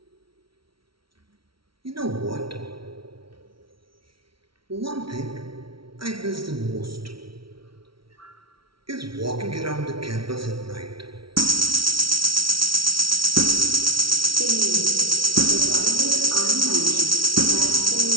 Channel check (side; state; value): left; late; 0.75 ms